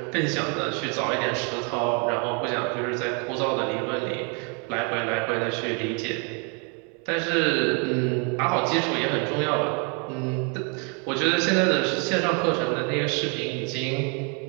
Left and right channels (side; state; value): left; quieter; 36.2 dB